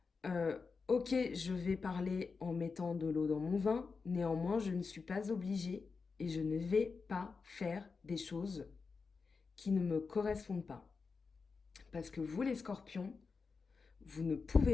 Ok, je vais parler en mettant de l'eau dans mon vin, néanmoins, je ne suis pas obligée et je ne vais pas faire des choses qui ne me correspondent pas. Parce que vous, les scorpions, vous ne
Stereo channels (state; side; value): quieter; right; 4.8 dB